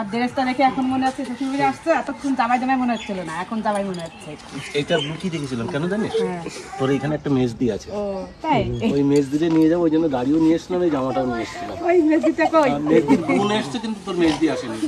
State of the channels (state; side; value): identical; both; correlation 1.00